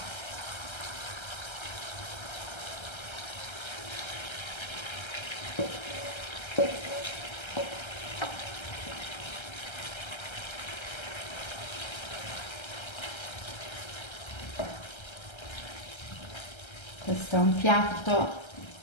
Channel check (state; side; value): late; right; 1.3 ms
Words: Questo è un piatto